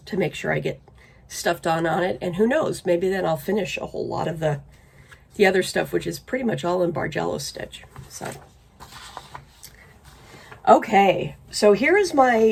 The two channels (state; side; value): identical; both; correlation 1.00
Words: to make sure I get stuff done on it. And who knows, maybe then I'll finish a whole lot of the other stuff, which is pretty much all in Bargello stitch. So, okay, so here is